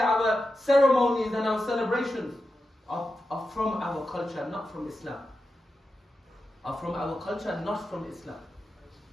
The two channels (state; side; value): normal; both; correlation 0.90